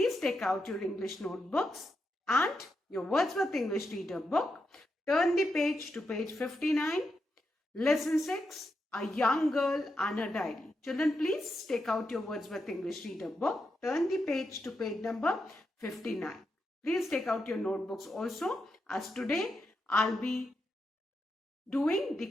take out your English notebooks and your Wordsworth English Reader book. Turn the page to page 59. Lesson 6, A Young Girl and a Diary. Children, please take out your Wordsworth English Reader book. Turn the page to page number 59. Please take out your notebooks also, as today I'll be doing the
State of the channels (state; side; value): normal; both; correlation 0.85